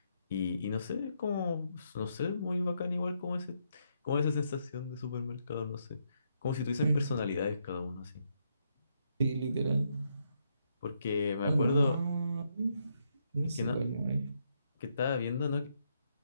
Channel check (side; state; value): both; inverted; correlation -0.77